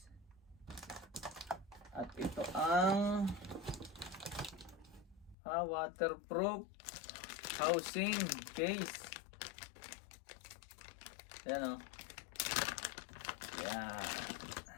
At ito ang waterproof housing case. Yan o. Yan.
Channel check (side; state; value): right; drops out; at 5.4 s